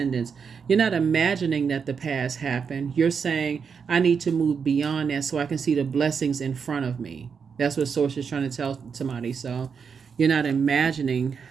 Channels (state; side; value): quieter; left; 6.2 dB